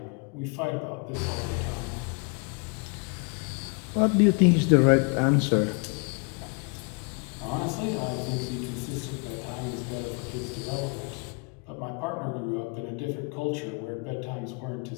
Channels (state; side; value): quieter; right; 33.9 dB